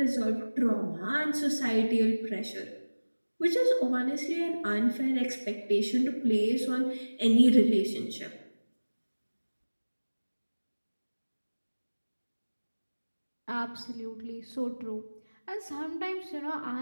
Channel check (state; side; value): inverted; both; correlation -1.00